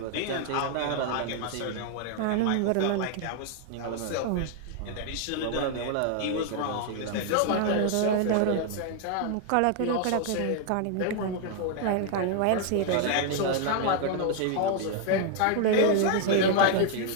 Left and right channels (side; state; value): both; different; correlation 0.00